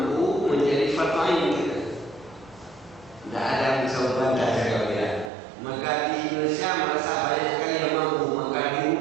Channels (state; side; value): drops out; left; at 5.3 s